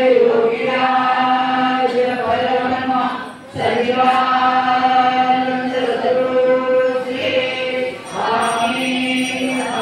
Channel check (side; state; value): both; identical; correlation 1.00